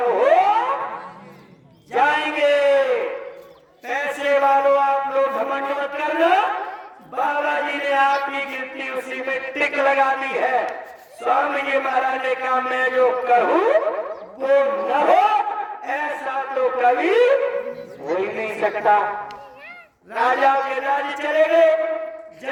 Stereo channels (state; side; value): identical; both; correlation 1.00